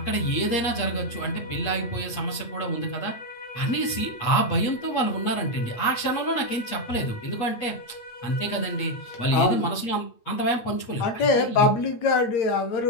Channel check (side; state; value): right; late; 8.6 ms